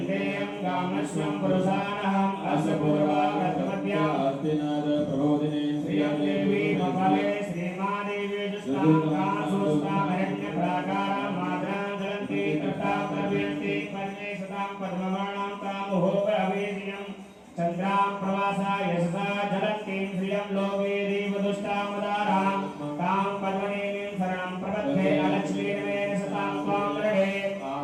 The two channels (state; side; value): identical; both; correlation 1.00